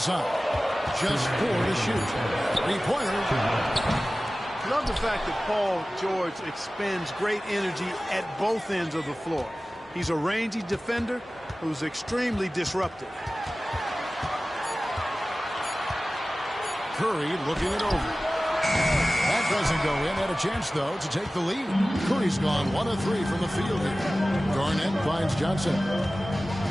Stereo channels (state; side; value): normal; both; correlation 0.97